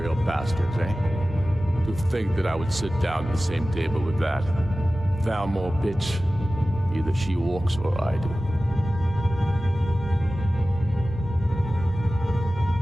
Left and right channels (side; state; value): both; normal; correlation 0.96